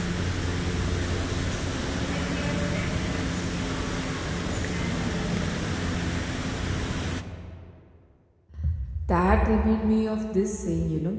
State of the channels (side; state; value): both; identical; correlation 1.00